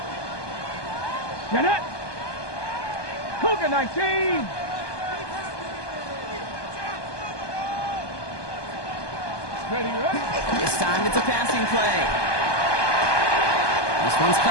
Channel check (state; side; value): late; right; 1.2 ms